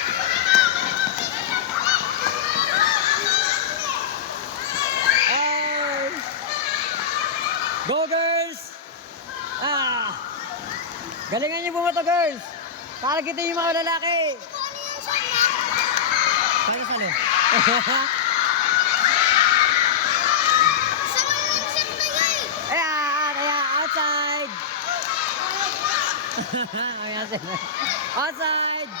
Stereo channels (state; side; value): quieter; right; 6.9 dB